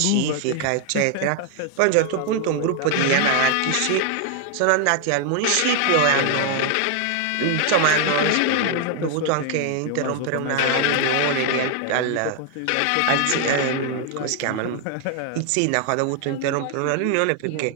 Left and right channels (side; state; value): both; different; correlation 0.00